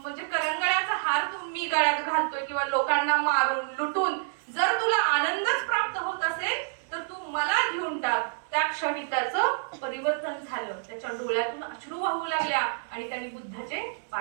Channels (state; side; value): silent; left; 59 dB below the other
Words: करंगळ्याचा हार मी गळ्यात घालतोय किंवा लोकांना मारून लुटून जर तुला आनंदच प्राप्त होत असेल तर तू मला घेऊन टाक. त्या क्षणी त्याचं परिवर्तन झालं, त्याच्या डोळ्यातून अश्रू वाहू लागल्या आणि त्यांनी बुद्धाचे